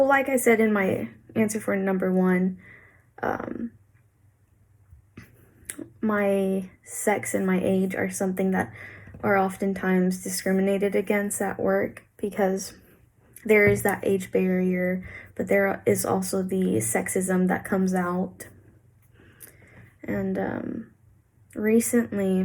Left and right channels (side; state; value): both; identical; correlation 1.00